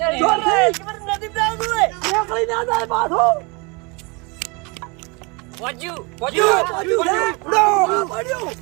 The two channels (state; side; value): quieter; left; 29.4 dB